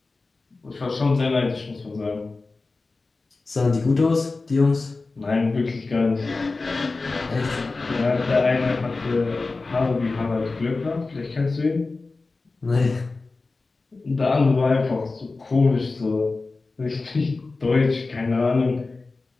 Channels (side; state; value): right; quieter; 3.7 dB